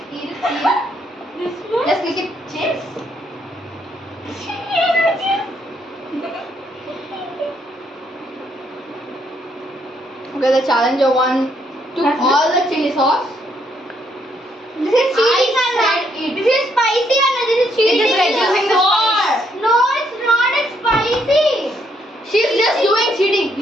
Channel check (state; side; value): normal; both; correlation 0.73